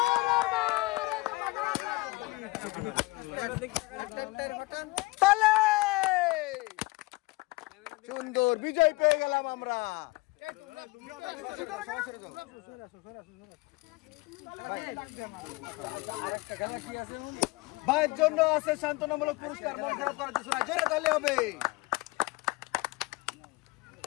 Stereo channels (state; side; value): quieter; right; 23.6 dB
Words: তালে সুন্দর বিজয় পেয়ে গেলাম আমরা। ভাইয়ের জন্য আছে সান্ত্বনামূলক পুরস্কার, মন খারাপ করার কিছু না, জোরে তালি হবে।